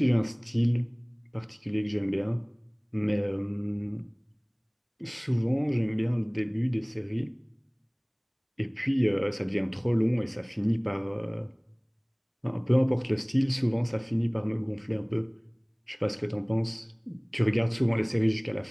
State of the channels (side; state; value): both; identical; correlation 1.00